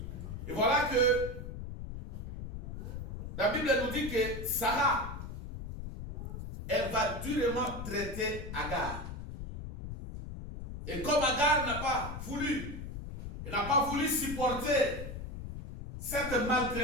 Et voilà que la Bible nous dit que Sarah, elle va durement traiter Agar. Et comme Agar n'a pas voulu, elle n'a pas voulu supporter cette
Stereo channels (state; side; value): noise; left; rumble, 8 dB below the sound